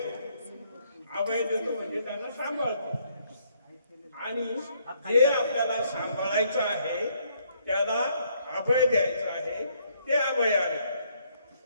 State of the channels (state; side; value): inverted; both; correlation -0.70